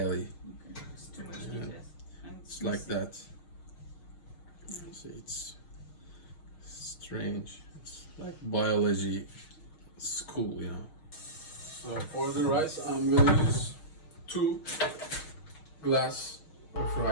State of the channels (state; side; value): late; right; 6.3 ms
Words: Okay, it's too much details. And It's like that. See, it's strange. It's like biology school, you know. So for the rice, I'm gonna use 2 glass of